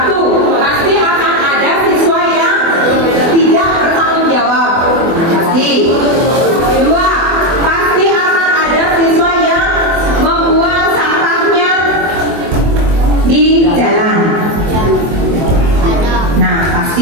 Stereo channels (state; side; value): late; left; 24 ms